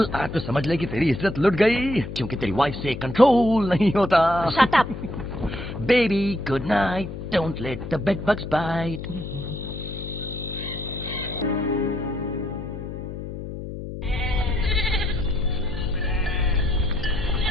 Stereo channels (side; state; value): left; noise; hum, 8 dB below the sound